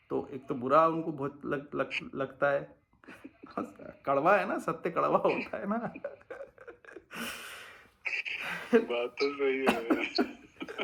तो एक तो बुरा उनको बहुत लगता है। कड़वा है ना, सत्य कड़वा होता है ना। बात तो सही है।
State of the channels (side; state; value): both; identical; correlation 1.00